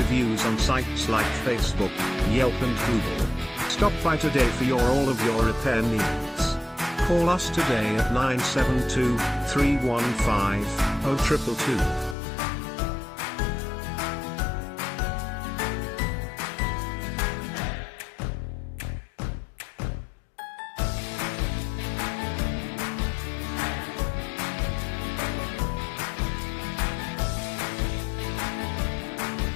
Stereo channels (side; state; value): right; drops out; at 12.2 s